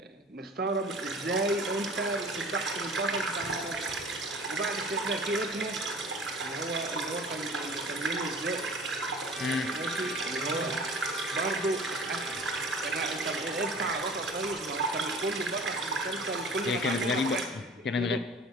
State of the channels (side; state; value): both; normal; correlation 0.44